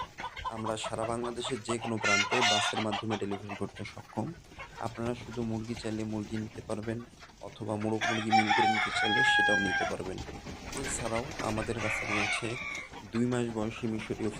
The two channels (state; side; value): identical; both; correlation 1.00